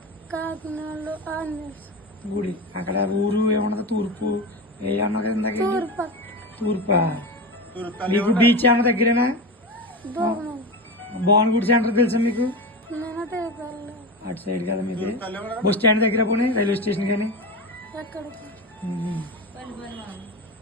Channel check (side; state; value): both; normal; correlation 0.22